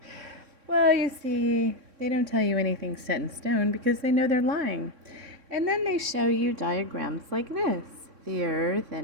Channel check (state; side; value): late; left; 3.6 ms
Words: Well, you see, they don't tell you anything set in stone because they know they're lying. And then they show you diagrams like this. The Earth